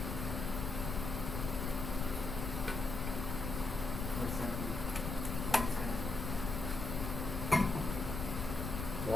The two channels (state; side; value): noise; left; rumble, 3 dB below the sound